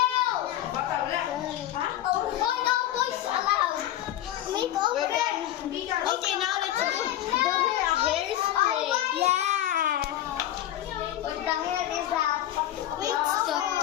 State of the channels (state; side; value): quieter; right; 12.8 dB